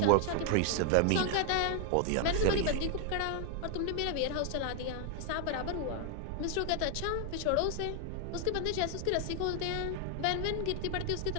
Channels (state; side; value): different; both; correlation 0.00